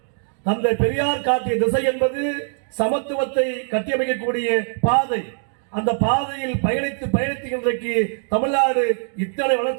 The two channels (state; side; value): silent; left; 60 dB below the other